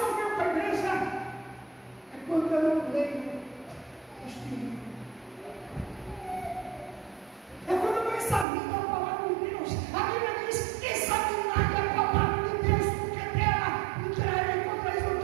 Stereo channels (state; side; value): drops out; left; at 8.5 s